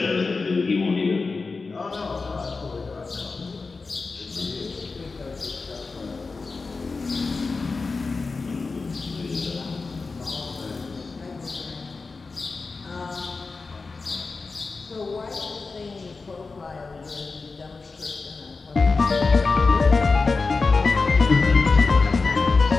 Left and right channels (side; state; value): right; quieter; 4.1 dB